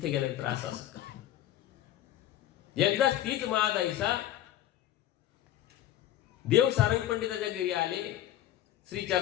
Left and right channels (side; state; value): right; quieter; 12.7 dB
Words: गेल्यानंतर असं का. एकदाच तीच महादाईसा देव सारंग पंडिताच्या घरी आले.